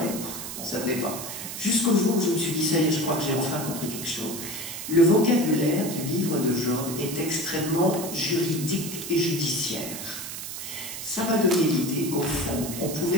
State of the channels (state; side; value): noise; right; hiss, 8 dB below the sound